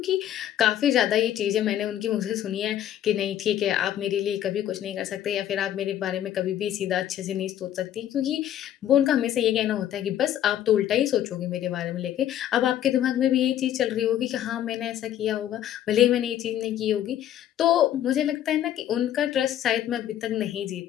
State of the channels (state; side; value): quieter; right; 11.4 dB